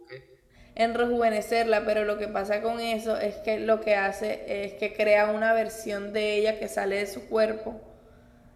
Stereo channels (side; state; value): both; identical; correlation 1.00